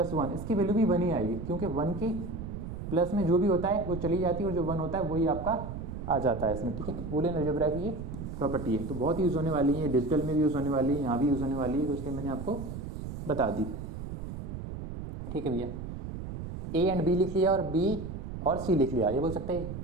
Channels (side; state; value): right; noise; rumble, 7 dB below the sound